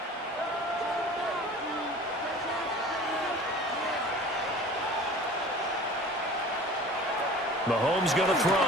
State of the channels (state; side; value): normal; both; correlation 0.43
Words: Mahomes going to